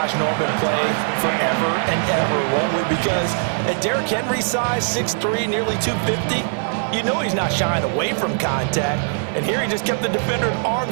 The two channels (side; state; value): left; silent; 65 dB below the other